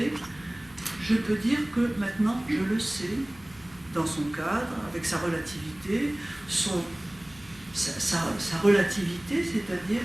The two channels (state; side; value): noise; left; hum, 25 dB below the sound